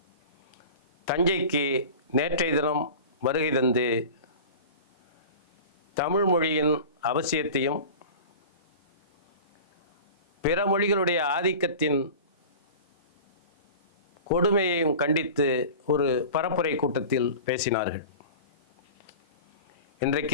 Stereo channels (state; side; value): inverted; both; correlation -0.36